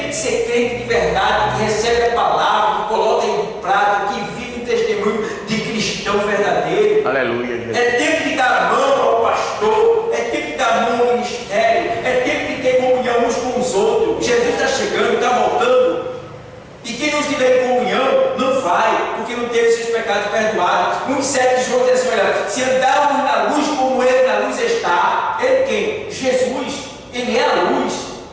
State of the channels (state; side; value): identical; both; correlation 1.00